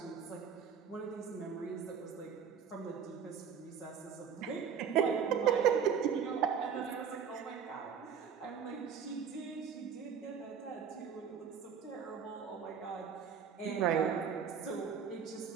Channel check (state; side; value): quieter; left; 7.2 dB